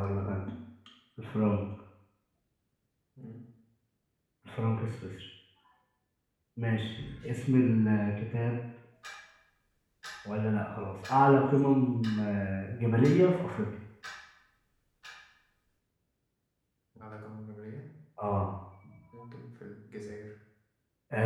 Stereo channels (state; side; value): identical; both; correlation 1.00